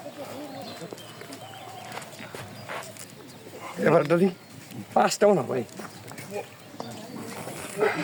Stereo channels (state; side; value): identical; both; correlation 1.00